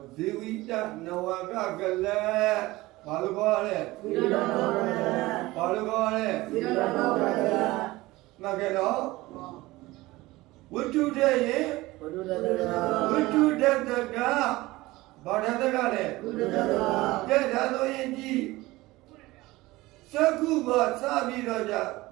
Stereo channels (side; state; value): left; quieter; 19.5 dB